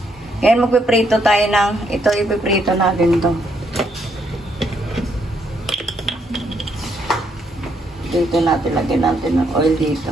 Ngayon magpiprito tayo ng, ito ipiprito natin to. Dito natin, lagyan natin ng oil dito.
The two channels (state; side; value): normal; both; correlation 0.74